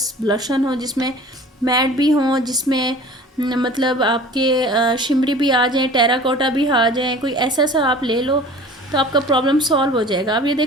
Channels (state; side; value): normal; both; correlation 0.43